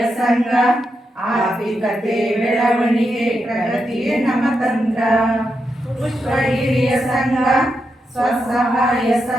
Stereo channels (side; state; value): both; normal; correlation 0.85